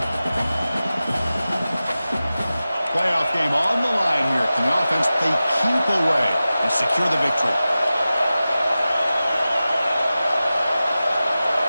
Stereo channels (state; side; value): inverted; both; correlation -0.95